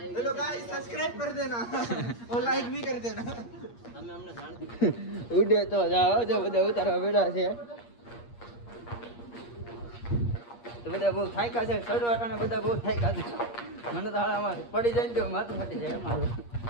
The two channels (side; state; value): right; late; 8.5 ms